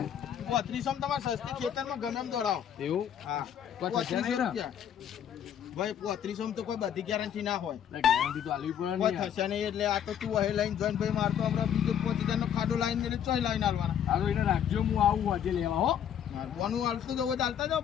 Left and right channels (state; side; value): quieter; right; 9.3 dB